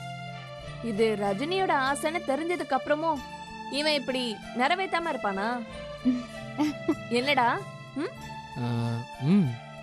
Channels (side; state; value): both; identical; correlation 1.00